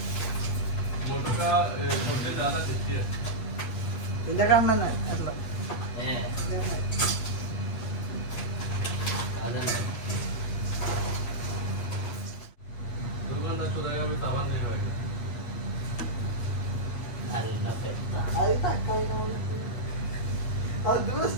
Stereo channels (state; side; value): late; right; 8.3 ms